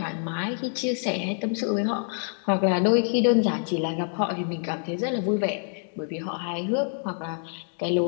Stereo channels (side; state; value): right; silent; 61 dB below the other